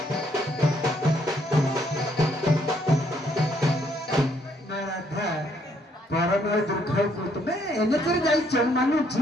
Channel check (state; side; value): normal; both; correlation 0.69